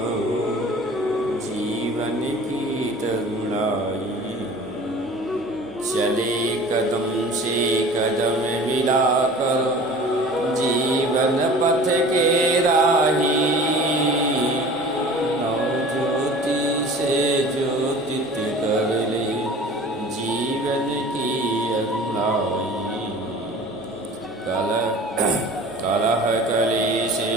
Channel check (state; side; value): normal; both; correlation 0.42